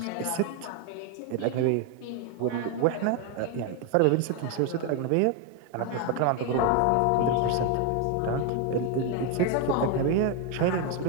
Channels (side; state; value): both; different; correlation 0.01